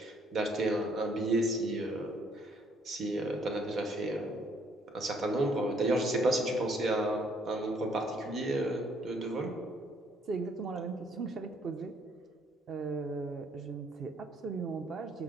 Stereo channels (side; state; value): both; normal; correlation 0.66